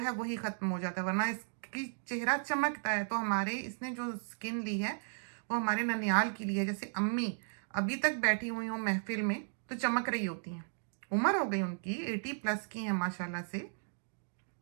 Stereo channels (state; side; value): silent; left; digital silence